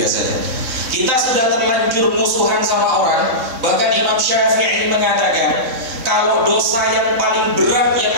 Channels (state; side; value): late; left; 3.6 ms